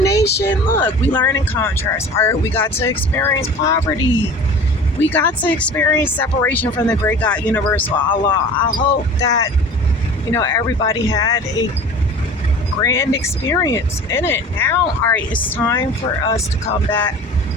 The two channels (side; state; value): both; normal; correlation 0.41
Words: look, we learn in contrast. We got to experience poverty. We got to experience separation from the great God, universal Allah. I hope that, everybody had a grand experience in it. Now, all right, it's time for us to come back